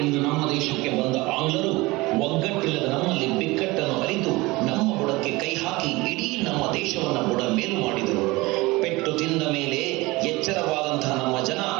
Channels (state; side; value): quieter; left; 21.9 dB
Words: ಎಂದು ನಮ್ಮ ದೇಶಕ್ಕೆ ಬಂದ ಆಂಗ್ಲರು ಒಗ್ಗಟ್ಟಿಲ್ಲದ ನಮ್ಮಲ್ಲಿ ಬಿಕ್ಕಟ್ಟನ್ನು ಅರಿತು ನಮ್ಮ ಬುಡಕ್ಕೆ ಕೈ ಹಾಕಿ ಇಡೀ ನಮ್ಮ ದೇಶವನ್ನ ಬುಡ ಮೇಲು ಮಾಡಿದರು. ಪೆಟ್ಟು ತಿಂದ ಮೇಲೆ ಎಚ್ಚರವಾದಂತಹ ನಮ್ಮ ಜನ